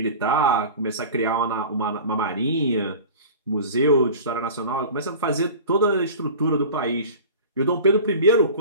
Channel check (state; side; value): inverted; both; correlation -0.37